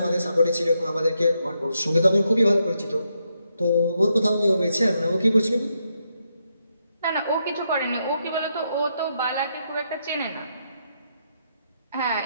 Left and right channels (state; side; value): inverted; both; correlation -0.80